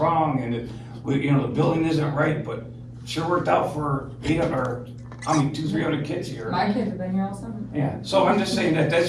and you know, the building isn't right, but sure worked out for 200-300 kids here. My kids have been here all summer. Yeah, so I'm just saying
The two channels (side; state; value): both; identical; correlation 1.00